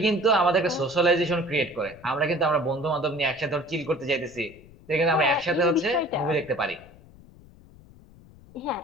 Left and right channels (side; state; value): left; noise; rumble, 23 dB below the sound